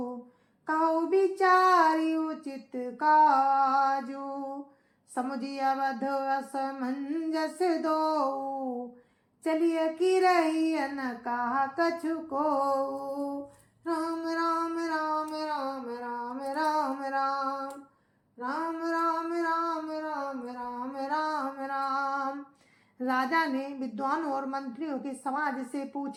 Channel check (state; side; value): identical; both; correlation 1.00